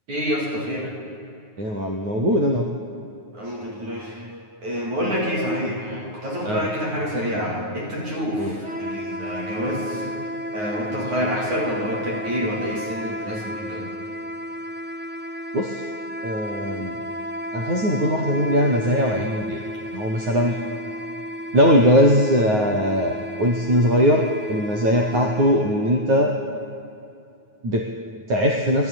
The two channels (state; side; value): late; left; 9.5 ms